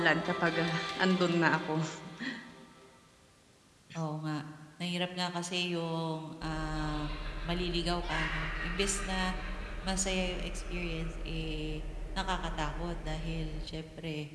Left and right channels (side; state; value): both; identical; correlation 1.00